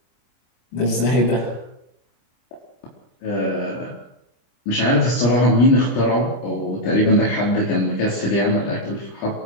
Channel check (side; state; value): right; late; 25 ms